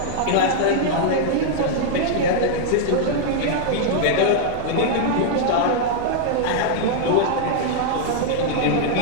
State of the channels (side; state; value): both; different; correlation -0.01